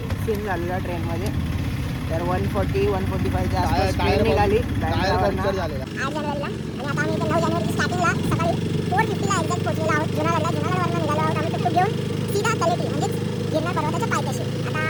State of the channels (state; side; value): identical; both; correlation 1.00